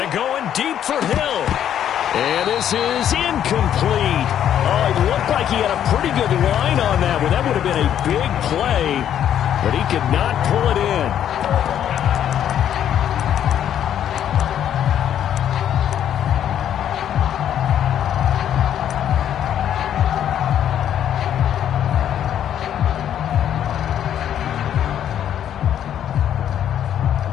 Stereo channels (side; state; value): right; quieter; 10.1 dB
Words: going deep for Hill. And this is incomplete. Oh, it looked like he had a pretty good line on that one. That would have been a big play, but he could not pull it in.